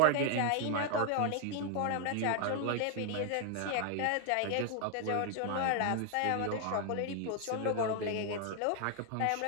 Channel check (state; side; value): different; both; correlation 0.00